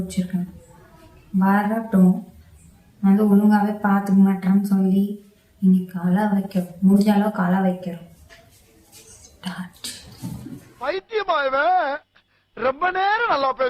வரட்டும், வந்து ஒழுங்காகவே பார்த்துக்க மாட்டேன்னு சொல்லி இன்னைக்கு அழ வைக்கிறோம், முடிஞ்ச அளவுக்கு அழ வைக்கிறோம். பைத்தியமாயவே ரொம்ப நேரம் நல்லா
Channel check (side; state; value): both; identical; correlation 1.00